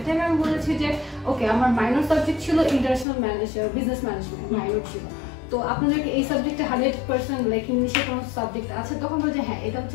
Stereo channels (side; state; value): right; drops out; at 3.1 s